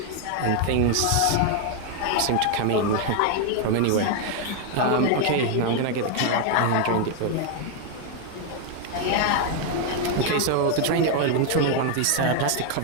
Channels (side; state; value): both; different; correlation 0.01